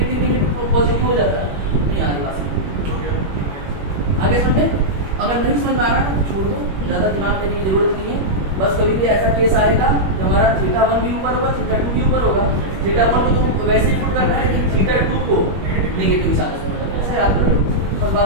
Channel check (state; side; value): late; left; 21 ms